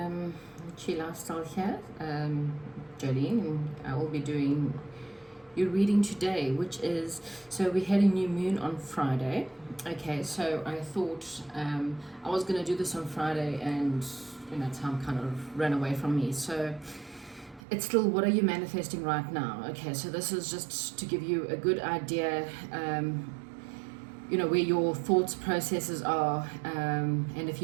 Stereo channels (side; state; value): left; drops out; at 17.6 s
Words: Lifestyle here, Jolene, and I will be doing your reading today, which is, so we had a new moon on Friday. Okay, so I thought I was going to do this on Friday, and time kind of ran away from me. So it's still, what are you manifesting right now? Okay, so this is just to give you a good idea, where your thoughts processes are, and if